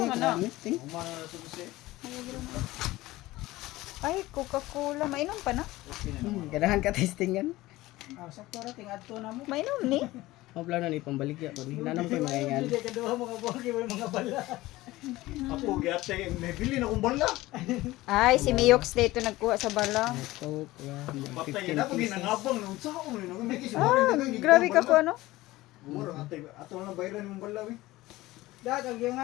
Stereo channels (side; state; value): right; quieter; 18.2 dB